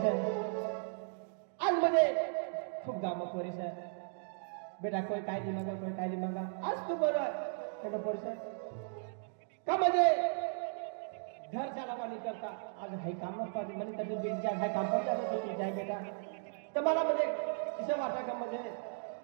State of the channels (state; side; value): silent; left; digital silence